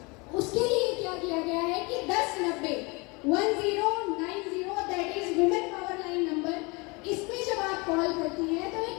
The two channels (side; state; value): right; quieter; 27.8 dB